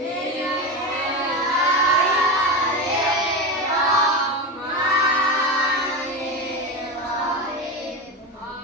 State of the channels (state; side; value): normal; both; correlation 0.20